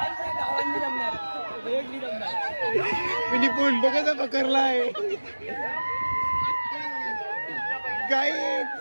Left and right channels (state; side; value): inverted; both; correlation -1.00